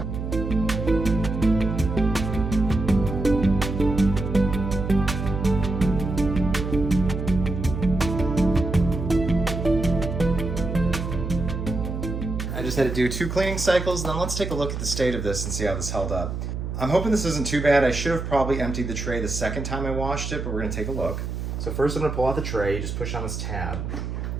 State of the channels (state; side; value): noise; right; hum, 5 dB below the sound